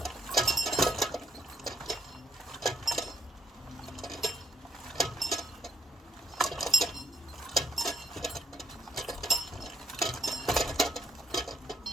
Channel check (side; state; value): both; normal; correlation 0.71